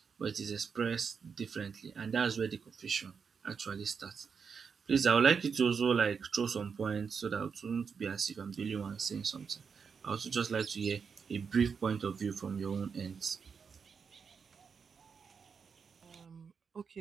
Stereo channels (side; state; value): left; quieter; 6.0 dB